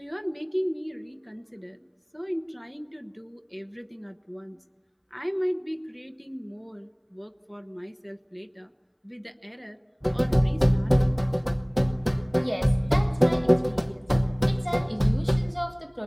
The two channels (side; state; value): both; identical; correlation 1.00